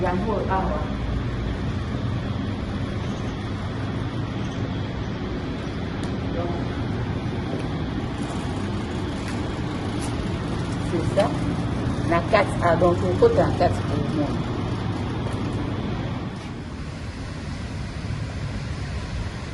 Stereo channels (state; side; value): identical; both; correlation 1.00